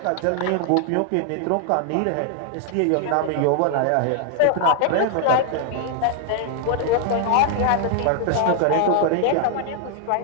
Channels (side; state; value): both; different; correlation 0.00